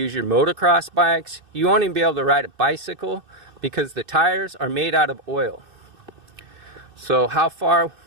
your motocross bikes. You won't even be able to ride a bicycle because the tires are made out of oil. So how far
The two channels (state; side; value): late; left; 2.6 ms